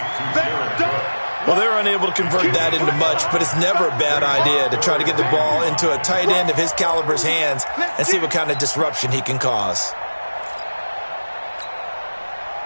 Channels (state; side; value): inverted; both; correlation -1.00